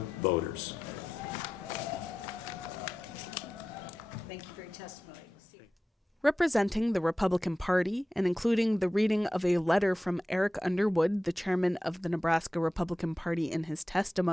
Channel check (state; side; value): normal; both; correlation 0.93